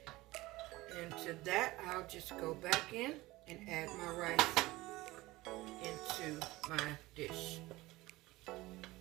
into that, I'll just go back in and add my rice into my dish.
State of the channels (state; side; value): quieter; left; 19.4 dB